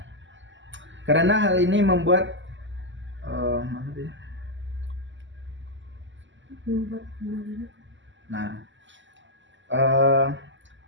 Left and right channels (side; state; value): left; late; 0.54 ms